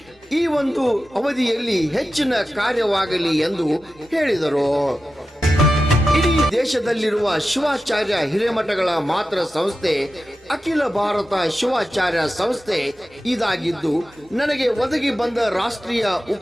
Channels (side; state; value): both; normal; correlation 0.93